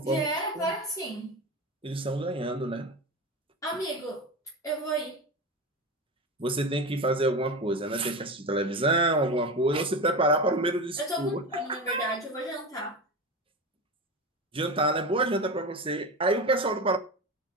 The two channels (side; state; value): both; normal; correlation 0.24